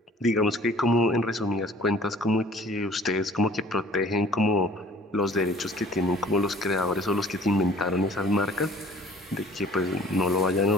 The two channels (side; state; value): both; normal; correlation 0.52